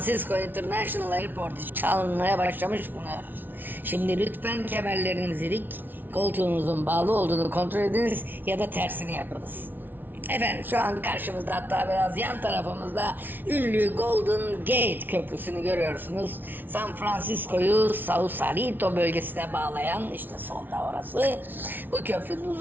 International Airport çalmaya başlamış bulunuyor. Şimdi lütfen kemerlerinizi dik, koltuğunuzun bağlı olduğunu kontrol ediniz ya da tersini yapınız. Efendim, şu an karşımızda, hatta biraz yan tarafımızda ünlü Golden Gate Köprüsü'nü görüyorsunuz. San Francisco'yu Sausalito bölgesine bağlayan, işte solda orası. Bu köprünün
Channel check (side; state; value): left; late; 0.091 ms